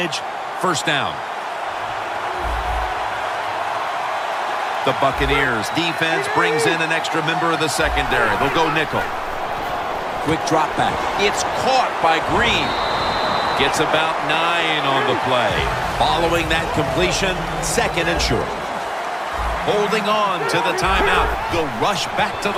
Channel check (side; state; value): both; identical; correlation 1.00